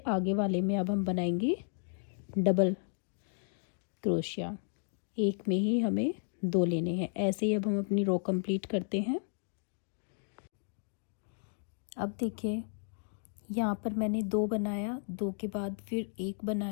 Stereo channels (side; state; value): right; silent; digital silence